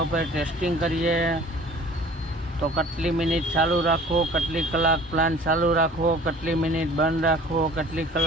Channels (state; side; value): normal; both; correlation 0.47